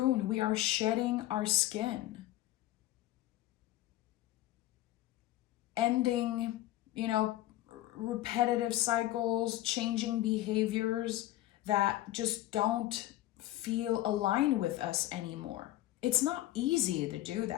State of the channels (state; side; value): quieter; right; 15.4 dB